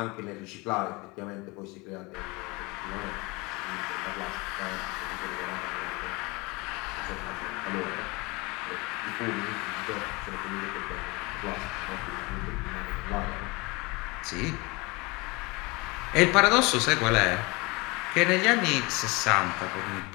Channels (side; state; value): right; quieter; 25.4 dB